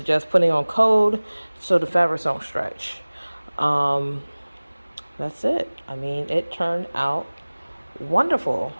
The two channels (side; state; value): both; inverted; correlation -1.00